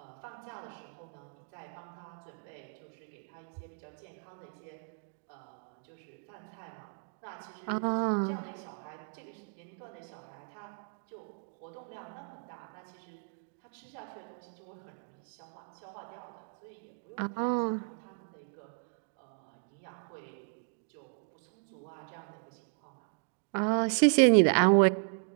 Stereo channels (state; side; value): silent; left; digital silence